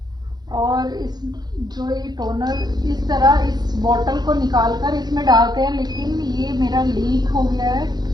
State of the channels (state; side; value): late; left; 0.20 ms